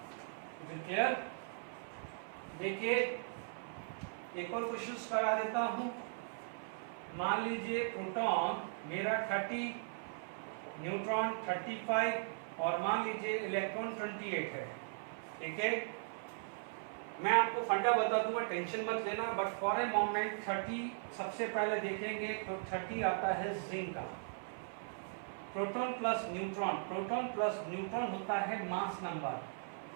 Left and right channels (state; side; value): silent; left; 52 dB below the other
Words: Is it clear? देखिए एक और क्वेश्चन करा देता हूं। मान लीजिए प्रोटॉन मेरा 30, न्यूट्रॉन 35 और मान लीजिए इलेक्ट्रॉन 28 है। ठीक है, मैं आपको फंडा बता दूंगा, टेंशन मत लेना, बट फॉर ए मोमेंट 30 सबसे पहले देखेंगे तो 30 आता है जिंक का। Proton plus neutron, proton plus neutron होता है mass number.